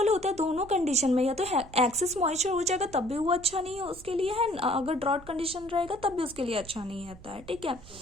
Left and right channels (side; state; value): right; noise; rumble, 19 dB below the sound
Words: होता है दोनों कंडीशन में, या तो एक्सेस मॉइस्चर हो जाएगा तब भी वो अच्छा नहीं है उसके लिए है, अगर ड्रॉट कंडीशन रहेगा तब भी उसके लिए अच्छा नहीं रहता है। ठीक है,